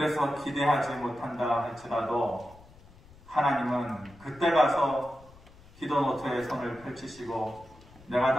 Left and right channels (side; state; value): left; noise; rumble, 24 dB below the sound